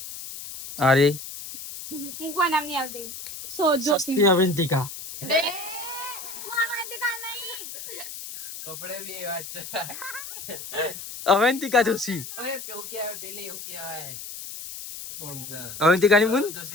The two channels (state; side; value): noise; left; hiss, 10 dB below the sound